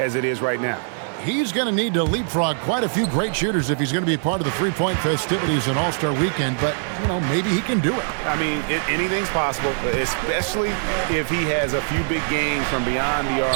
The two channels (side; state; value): left; silent; digital silence